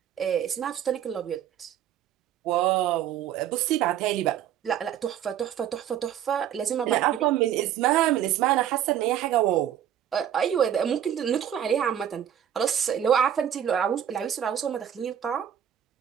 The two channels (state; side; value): quieter; left; 10.1 dB